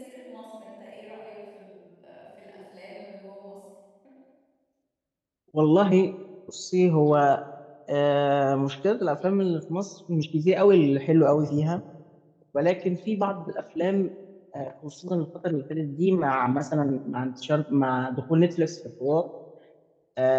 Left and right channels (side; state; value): both; identical; correlation 1.00